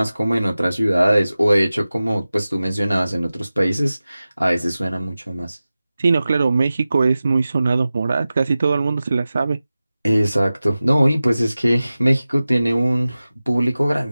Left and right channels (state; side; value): inverted; both; correlation -0.95